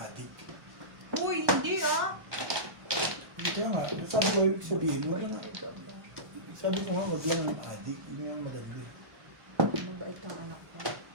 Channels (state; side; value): late; left; 1.1 ms